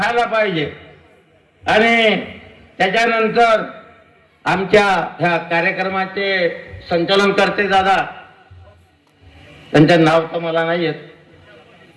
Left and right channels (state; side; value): identical; both; correlation 1.00